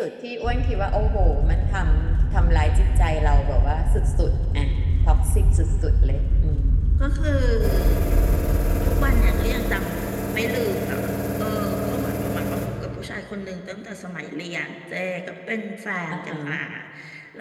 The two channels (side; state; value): both; identical; correlation 1.00